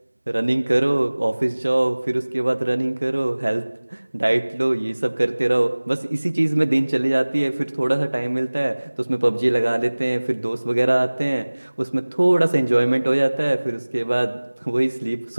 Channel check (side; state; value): both; inverted; correlation -1.00